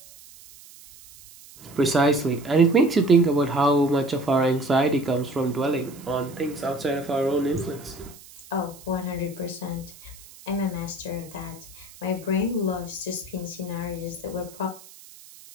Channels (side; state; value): right; noise; hiss, 21 dB below the sound